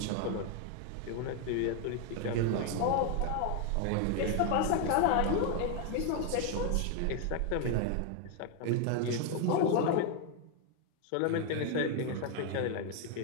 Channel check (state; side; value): different; both; correlation 0.01